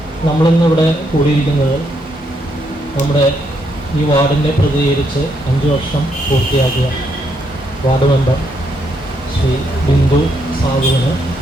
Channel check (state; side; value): normal; both; correlation 0.76